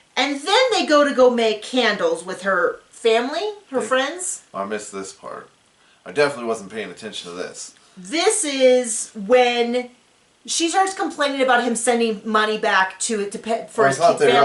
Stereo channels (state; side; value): identical; both; correlation 1.00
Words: And then they go make candles with her family, her friends. I missed this part. I definitely wasn't paying attention to this. This is when she starts complaining about him sending money back for his family. I thought they were